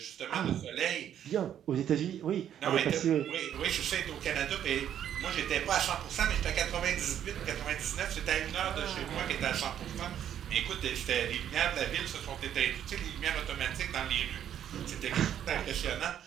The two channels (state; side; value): quieter; left; 10.0 dB